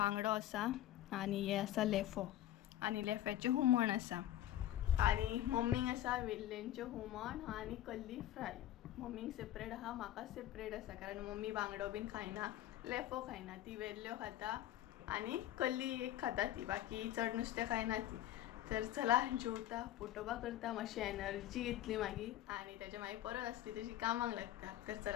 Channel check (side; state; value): right; quieter; 13.0 dB